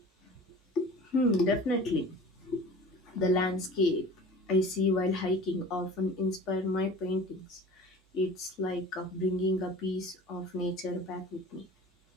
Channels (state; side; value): normal; both; correlation 0.41